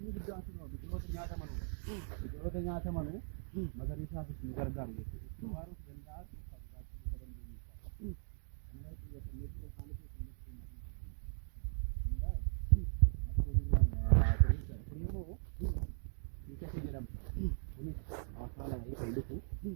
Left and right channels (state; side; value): silent; left; digital silence